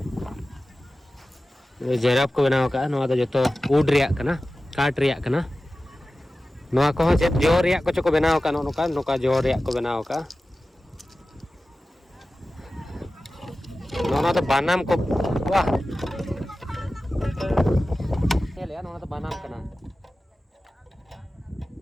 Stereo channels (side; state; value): both; normal; correlation 0.95